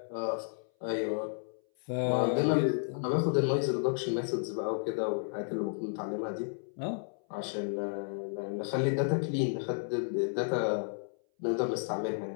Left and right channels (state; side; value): silent; right; 56 dB below the other